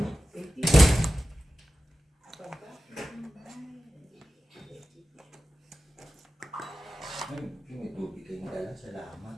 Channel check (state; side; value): normal; both; correlation 0.93